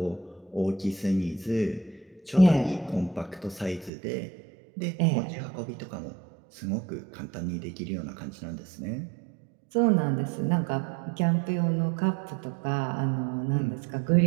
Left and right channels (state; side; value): drops out; left; at 3.9 s